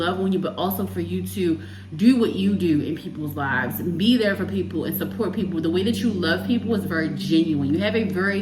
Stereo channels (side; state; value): both; identical; correlation 1.00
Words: on you, but also for you to do what you do in people's lives. Be there for people and support people. The way that you love people is very genuine. You have a